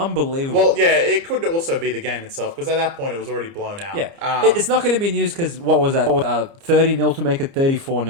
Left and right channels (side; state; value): left; late; 30 ms